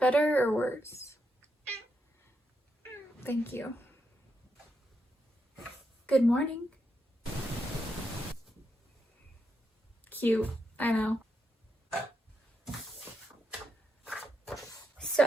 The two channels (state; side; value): normal; both; correlation 0.83